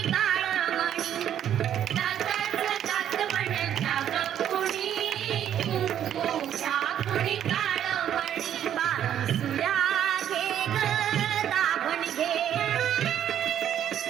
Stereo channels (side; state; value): left; quieter; 10.2 dB